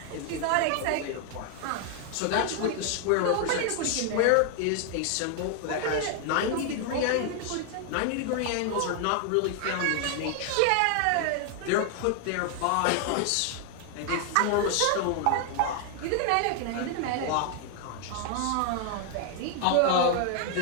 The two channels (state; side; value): different; both; correlation 0.00